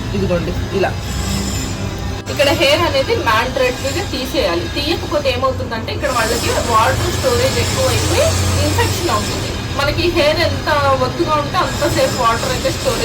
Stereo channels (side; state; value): both; identical; correlation 1.00